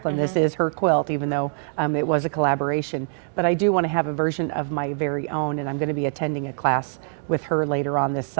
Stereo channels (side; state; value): left; silent; digital silence